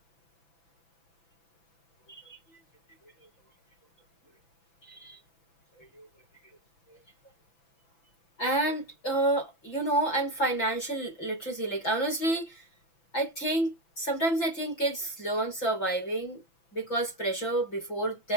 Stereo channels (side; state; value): right; late; 6.0 ms